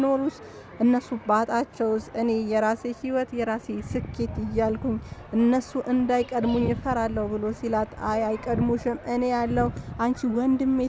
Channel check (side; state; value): both; identical; correlation 1.00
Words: እነሱ ባጣቸውስ እኔ የራሴ ህይወት የራሴ ስኬት እያልኩኝ እነሱ እንዳይቀድሙኝ እፈራለሁ ብሎ ሲላት አይቀድሙሽም፣ እኔ ያለው አንቺ ወንድሜ